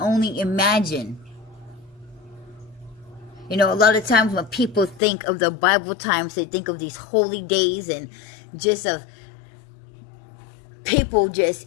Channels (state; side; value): drops out; right; at 5.0 s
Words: imagine. A lot of times when people think of the Bible times, they think of these holy days and just of people just